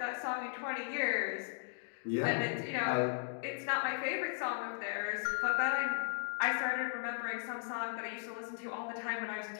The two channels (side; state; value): right; silent; digital silence